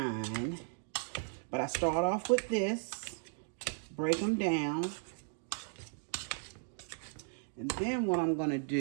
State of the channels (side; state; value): left; silent; 54 dB below the other